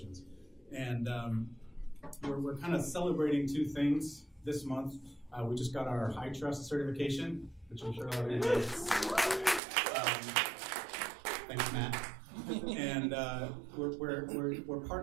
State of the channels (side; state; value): left; drops out; at 9.6 s